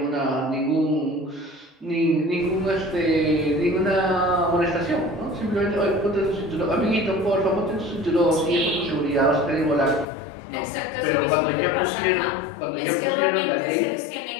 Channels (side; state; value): right; drops out; at 10.1 s